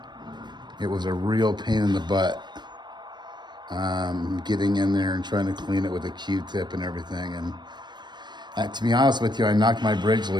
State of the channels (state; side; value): late; left; 0.21 ms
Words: it was a real pain in the butt. Getting in there and trying to clean it with a Q-tip and everything. And to be honest with you, I knocked my bridge